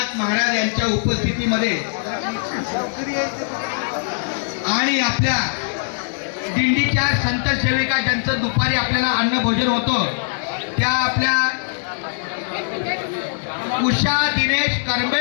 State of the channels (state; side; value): silent; right; digital silence